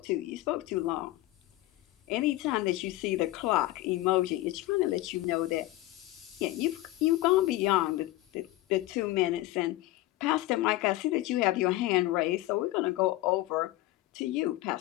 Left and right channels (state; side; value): quieter; right; 17.4 dB